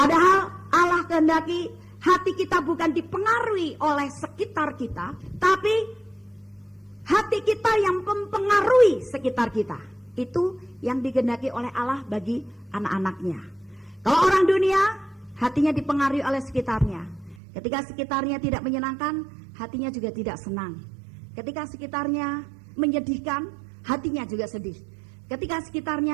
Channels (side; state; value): left; drops out; at 17.4 s